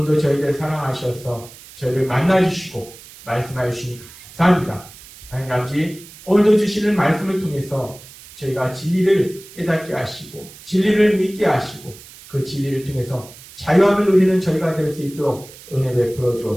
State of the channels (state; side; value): noise; right; hiss, 19 dB below the sound